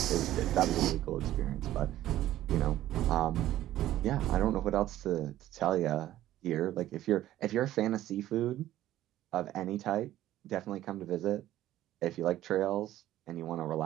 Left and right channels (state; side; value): quieter; left; 13.7 dB